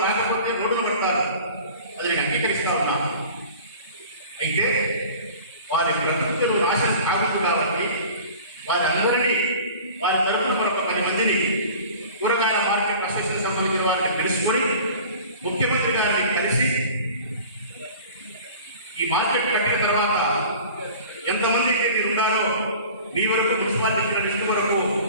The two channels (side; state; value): both; inverted; correlation -0.42